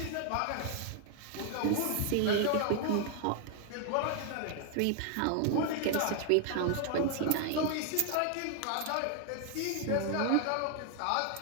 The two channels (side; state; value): both; different; correlation 0.00